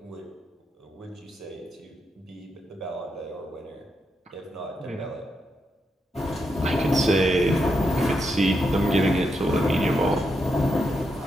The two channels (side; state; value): both; normal; correlation 0.83